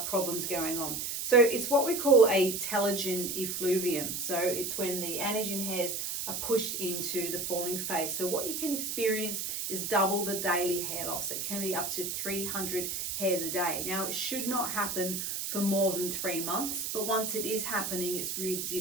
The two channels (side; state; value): right; noise; hiss, 3 dB below the sound